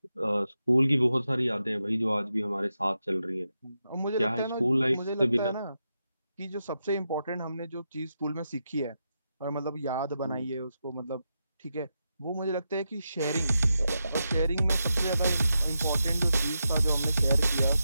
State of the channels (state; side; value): inverted; both; correlation -0.87